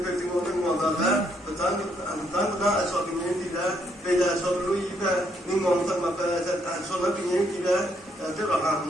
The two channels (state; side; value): normal; both; correlation 0.72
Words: perlu menguatkan. Tentang asal ini tidak, beda asal lu ini ni ngomong apa asal ini tidak.